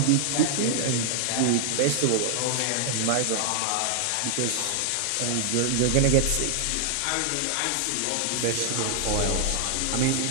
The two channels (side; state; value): both; different; correlation 0.00